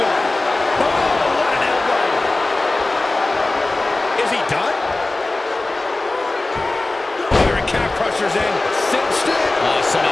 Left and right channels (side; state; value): right; quieter; 3.0 dB